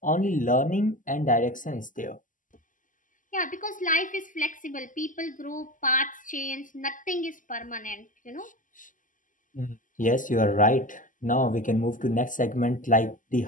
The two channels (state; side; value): late; right; 0.38 ms